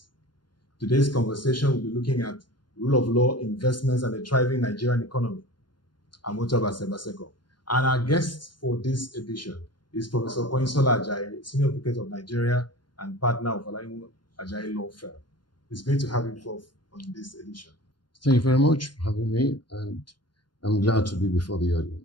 Today's conversation will be looking at rule of law, investments and the thriving Nigerian economy. I'm Otobase Baseko. And our guest for this edition is Professor Konyinsola Ajayi, Senior Advocate of Nigeria and partner of Olaniwu Ajayi Law Firm. It's great to have you both on this edition. Thank you very much for having me, and I'm glad to be before the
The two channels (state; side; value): late; right; 0.71 ms